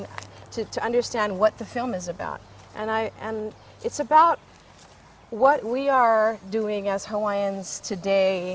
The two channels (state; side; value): identical; both; correlation 1.00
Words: to understand what the film is about. And it's about what we are doing as Hawaiians